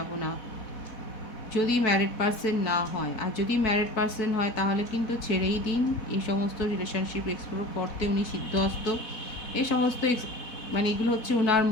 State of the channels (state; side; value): late; right; 4.1 ms